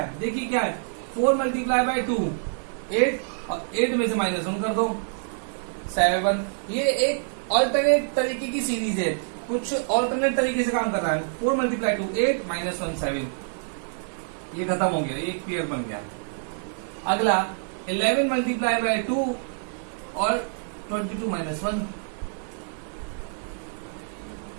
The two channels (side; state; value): left; silent; digital silence